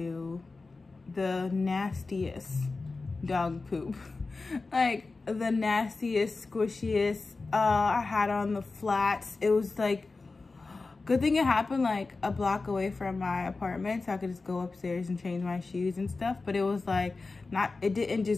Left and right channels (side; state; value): right; quieter; 3.8 dB